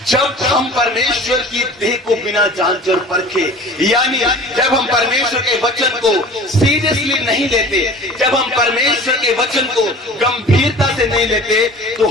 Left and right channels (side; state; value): both; normal; correlation 0.42